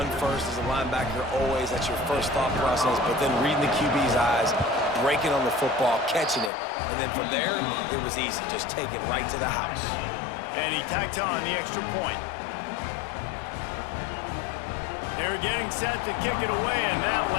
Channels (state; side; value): drops out; right; at 6.5 s